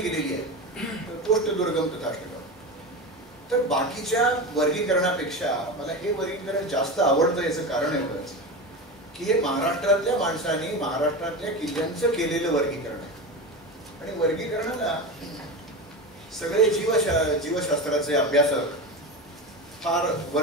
आहे. तर कोष्टदुर्गम तथाष्टकम. तर बाकीच्या वर्गीकरणापेक्षा मला हे वर्गीकरण जास्त आवडतं. याचं कारण एवढंच की हे महाराष्ट्रातल्या माणसांनी महाराष्ट्रातल्या किल्ल्यांचं केलेलं वर्गीकरण आहे. आणि वर्गीकरणाला सगळे जीवशास्त्राचे अभ्यासक फार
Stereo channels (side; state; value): both; normal; correlation 0.23